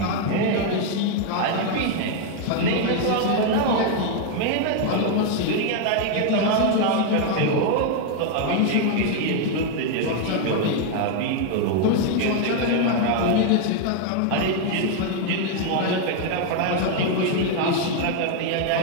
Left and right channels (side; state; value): both; different; correlation 0.00